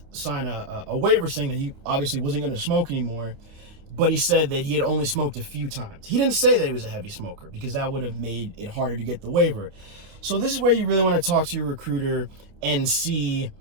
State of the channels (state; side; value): late; left; 29 ms